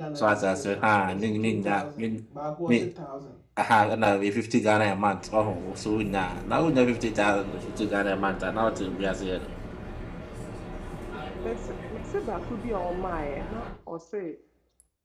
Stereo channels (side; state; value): both; identical; correlation 1.00